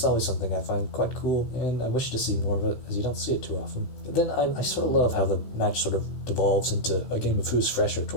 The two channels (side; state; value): right; late; 15 ms